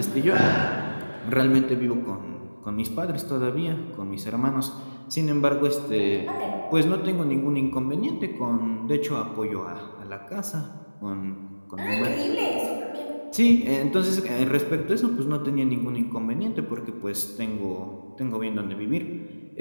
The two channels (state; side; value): inverted; both; correlation -1.00